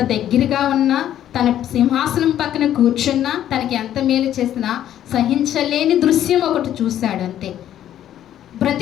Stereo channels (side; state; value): right; quieter; 11.3 dB